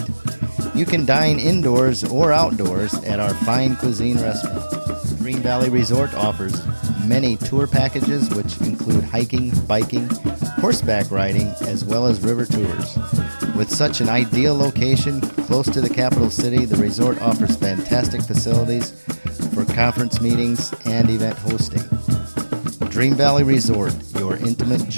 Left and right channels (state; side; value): inverted; both; correlation -1.00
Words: you can dine indoors or outdoors at our fine cuisine restaurant. Dream Valley Resort offers many tour packages which include hiking, biking, horseback riding, as well as river tours. With such an ideal location close to the capital city, the resort offers fantastic facilities for conference meetings and event hosting. Dream Valley Resort, your intimate